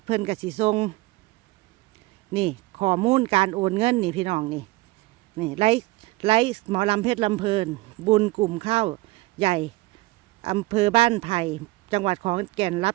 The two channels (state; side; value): quieter; left; 21.0 dB